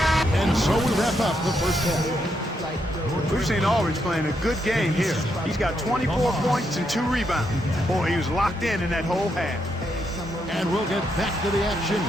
And so we wrap up the first half. We've seen Aldridge playing a good game here. He's got 24 points and 2 rebounds. Boy, he was locked in that whole half. And we'll get back to the action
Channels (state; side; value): normal; both; correlation 0.79